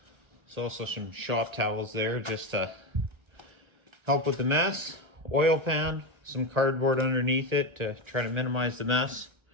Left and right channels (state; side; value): late; left; 1.1 ms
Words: There's also some shop towels there just to help with the mess. Oil pan, some cardboard underneath it to try to minimize the mess.